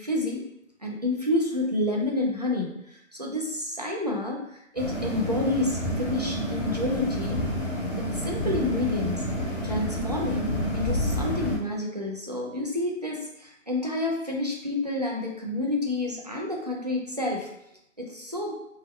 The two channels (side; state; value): both; normal; correlation -0.17